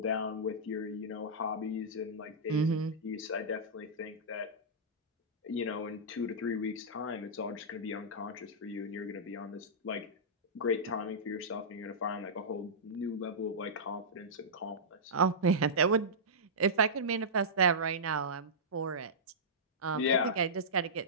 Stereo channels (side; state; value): both; normal; correlation -0.14